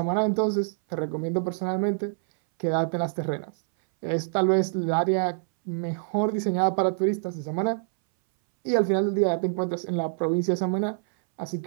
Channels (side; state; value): left; silent; 61 dB below the other